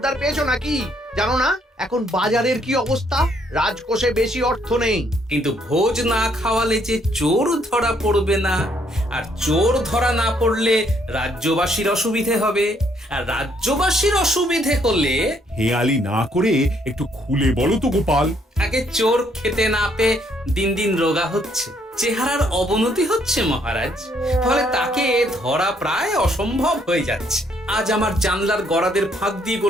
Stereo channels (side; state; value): both; normal; correlation 0.69